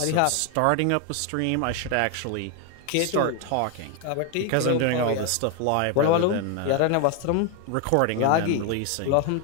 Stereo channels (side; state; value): both; different; correlation 0.01